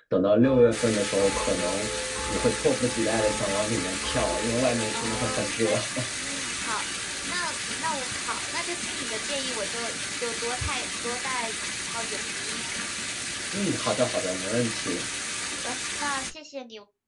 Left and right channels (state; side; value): identical; both; correlation 1.00